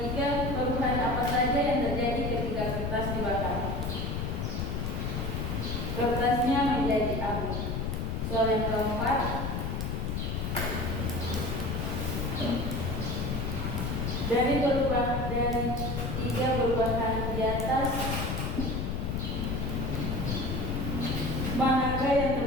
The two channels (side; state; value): left; noise; rumble, 1 dB below the sound